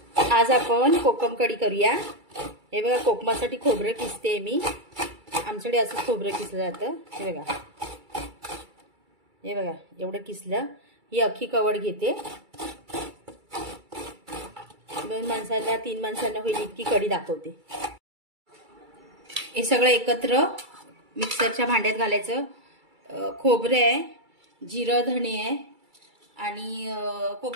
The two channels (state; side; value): late; left; 2.3 ms